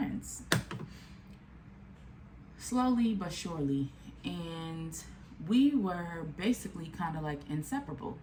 Slowly but surely. And we were basically kind of like inseparable.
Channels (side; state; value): both; identical; correlation 1.00